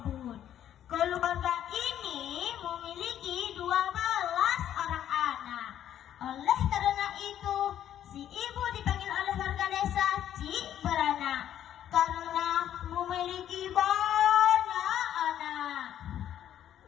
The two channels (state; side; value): quieter; right; 10.8 dB